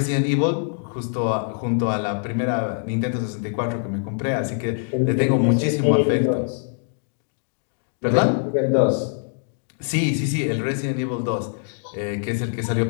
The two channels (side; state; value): right; silent; 63 dB below the other